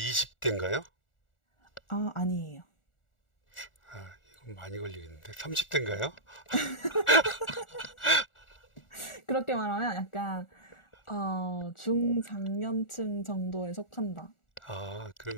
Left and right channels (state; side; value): late; right; 1.4 ms